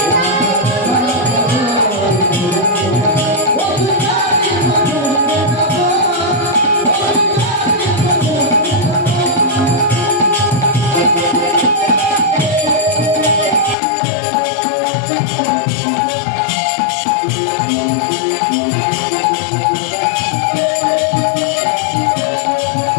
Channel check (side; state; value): right; drops out; at 13.8 s